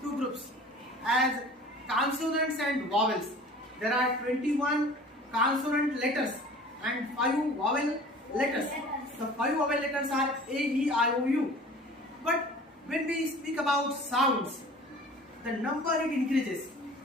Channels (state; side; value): normal; both; correlation 0.44